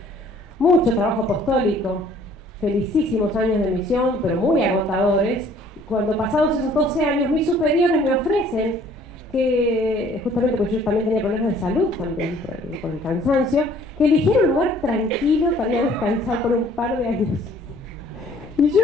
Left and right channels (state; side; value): normal; both; correlation 0.57